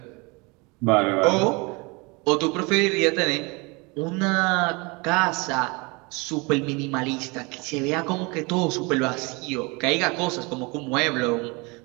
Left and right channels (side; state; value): left; quieter; 27.7 dB